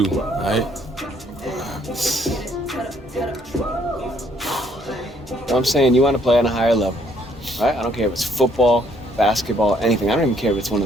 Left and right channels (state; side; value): normal; both; correlation 0.66